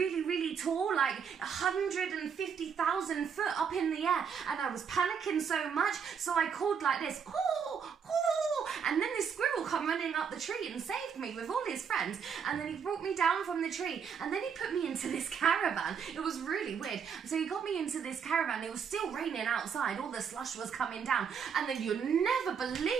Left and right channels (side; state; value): left; quieter; 6.9 dB